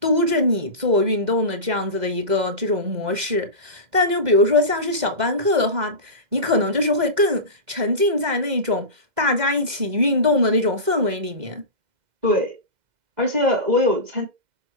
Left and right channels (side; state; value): left; late; 2.0 ms